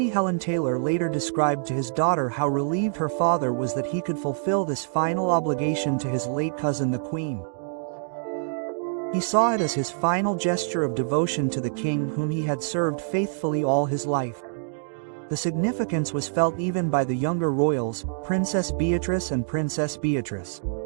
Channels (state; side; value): silent; left; digital silence